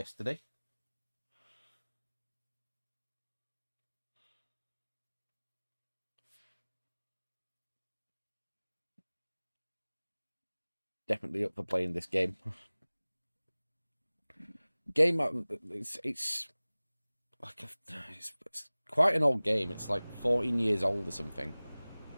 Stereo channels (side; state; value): both; inverted; correlation -1.00